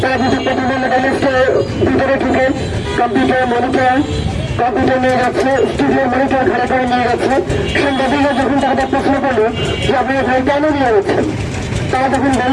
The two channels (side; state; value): both; identical; correlation 1.00